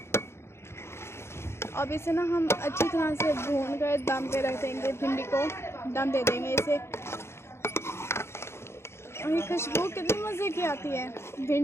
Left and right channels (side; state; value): right; late; 0.12 ms